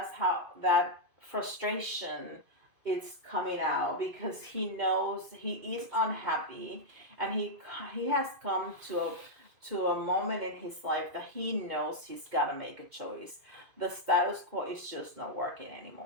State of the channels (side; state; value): left; late; 2.5 ms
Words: how that frustration is coming out, because he knows he is unhappy, and he has come to a moment in his life that he knows he's got to make a choice. The status quo is just not working